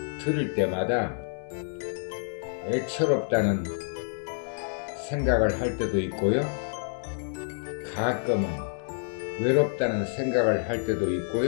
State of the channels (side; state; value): right; silent; 59 dB below the other